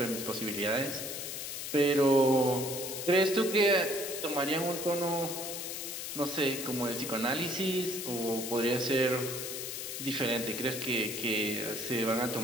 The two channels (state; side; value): noise; left; hiss, 6 dB below the sound